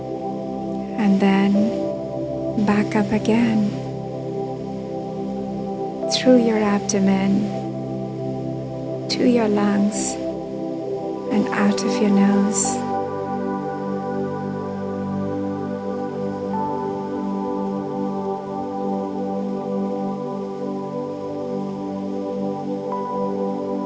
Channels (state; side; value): identical; both; correlation 1.00